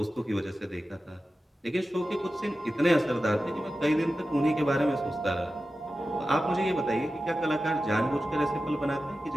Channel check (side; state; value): both; normal; correlation 0.93